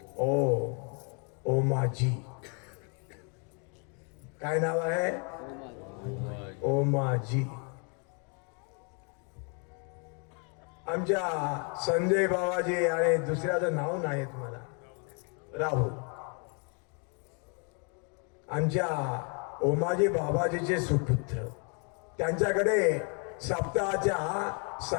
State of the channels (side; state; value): right; quieter; 37.3 dB